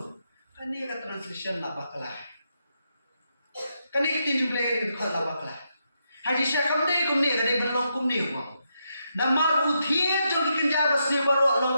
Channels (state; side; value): inverted; both; correlation -0.82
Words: Kan ni kata translation lah baklah. Kan ni kita jumpa lagi itu lah baklah. Haji syakam ni kum ni kan ni berlong kum ni wang. Nama uthir jom dikenja basni baru